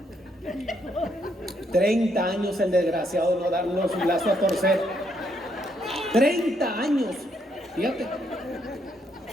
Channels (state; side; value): normal; both; correlation 0.74